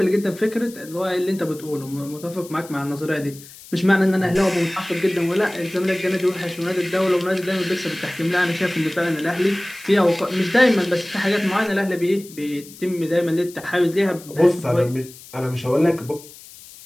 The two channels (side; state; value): left; noise; hiss, 19 dB below the sound